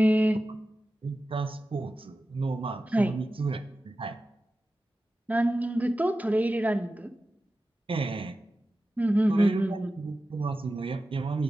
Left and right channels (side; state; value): both; normal; correlation 0.93